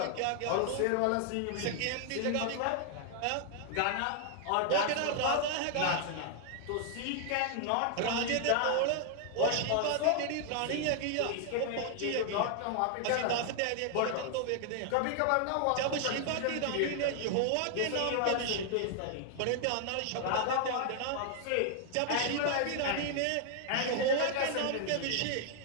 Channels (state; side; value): different; both; correlation 0.00